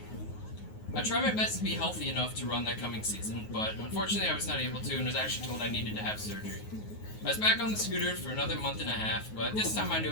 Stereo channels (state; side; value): late; right; 9.5 ms